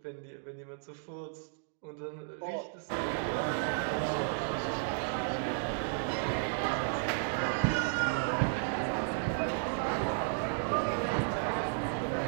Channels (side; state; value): left; silent; digital silence